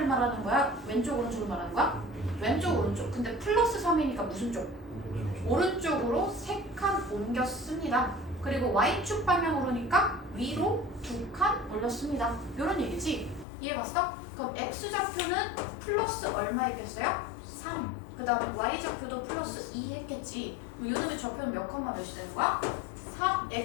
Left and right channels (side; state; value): right; drops out; at 13.5 s